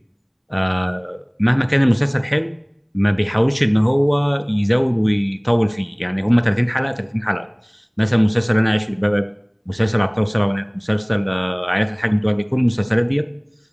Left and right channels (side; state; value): both; identical; correlation 1.00